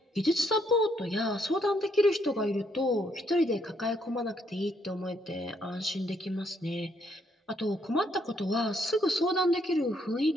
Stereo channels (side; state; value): both; normal; correlation 0.72